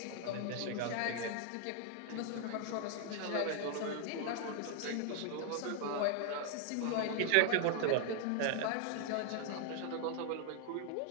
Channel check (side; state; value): both; different; correlation 0.00